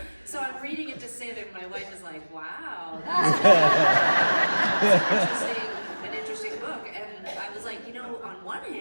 so I'm reading it to Sid, and my wife is like, wow, that's an interesting book. And I was like, you know, on one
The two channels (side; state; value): both; inverted; correlation -1.00